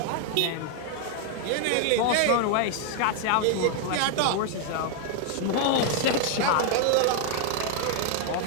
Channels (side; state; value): both; different; correlation 0.00